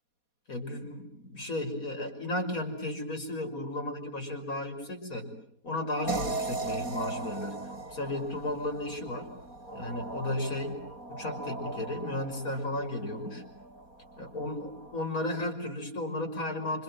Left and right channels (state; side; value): late; right; 4.2 ms